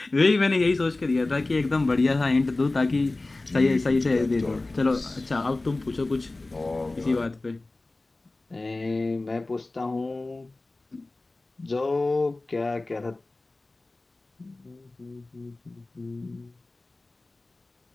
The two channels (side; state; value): right; quieter; 3.1 dB